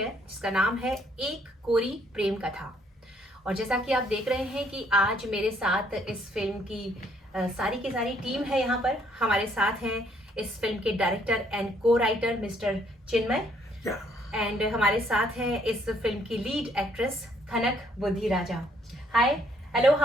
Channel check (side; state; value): both; normal; correlation 0.67